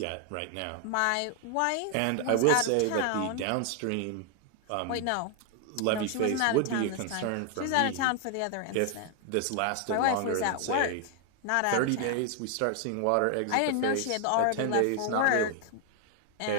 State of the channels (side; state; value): both; different; correlation 0.00